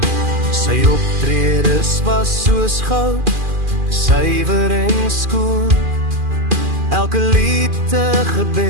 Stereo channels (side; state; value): left; late; 2.4 ms